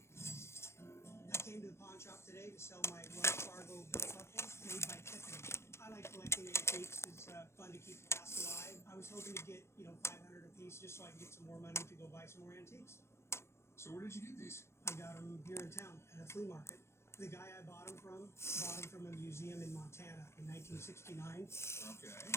came to the pawn shop today to sell my Wells Fargo belt buckles made by Tiffany. I like collecting antiques. It's fun to keep the past alive. I was hoping to get, 500 a piece just so I can get some more money to go buy some more antiques. So where did you get these? I got them here in town at a flea market. The guy I bought them from a museum in Montana in 1969. Okay.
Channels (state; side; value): late; right; 0.13 ms